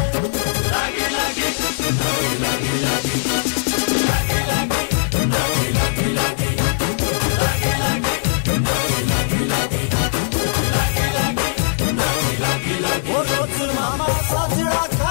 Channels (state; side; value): silent; right; digital silence